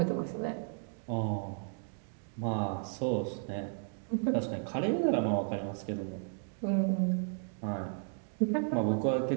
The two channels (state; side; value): silent; left; 55 dB below the other